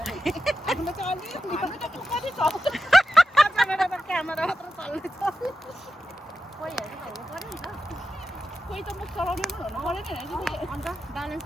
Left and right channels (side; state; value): both; normal; correlation 0.90